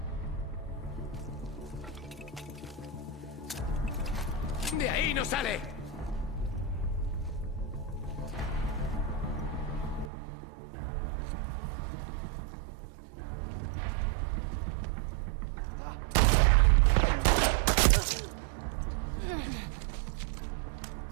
¡De ahí no sale!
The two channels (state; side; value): drops out; left; at 10.1 s